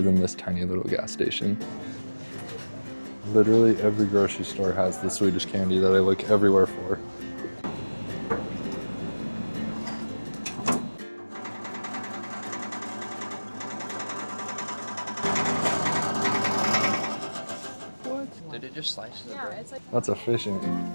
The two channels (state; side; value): inverted; both; correlation -1.00